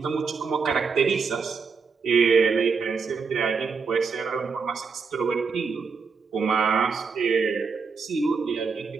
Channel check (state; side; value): quieter; left; 5.2 dB